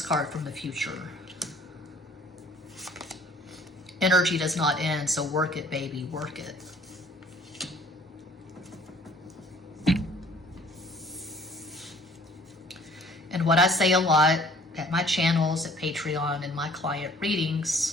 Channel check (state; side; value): normal; both; correlation 0.55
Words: from the future. Energy does not end, so work it, baby, work it. And what I say a lot at my channels, at Patreon, and my client